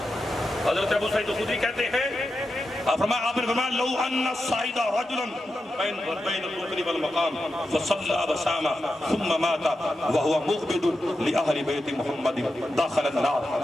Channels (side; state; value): both; normal; correlation 0.89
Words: حضرت ابو سعید خدری کہتے ہیں، آپ نے فرمایا لو ان الصعید رجلا بین الرکن والمقام فصلى وصام ثم مات وهو مغبد لاہل بیت محمد داخل النار۔